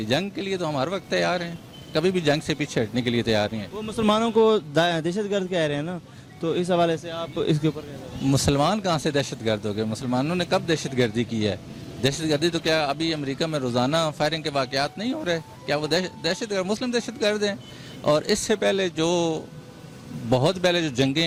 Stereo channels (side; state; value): both; identical; correlation 1.00